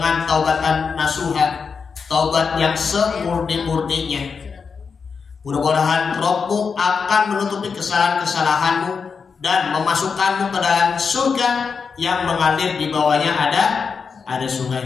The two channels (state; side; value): quieter; right; 5.6 dB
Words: taubatan nasuha, taubat yang semurni-murninya. Mudah-mudahan Rabbmu akan menutupi kesalahan-kesalahanmu dan memasukkanmu ke dalam surga yang mengalir di bawahnya ada